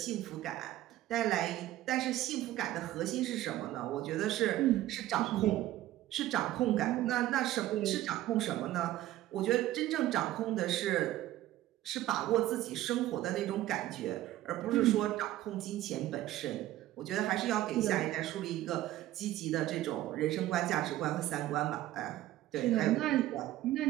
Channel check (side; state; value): left; quieter; 14.7 dB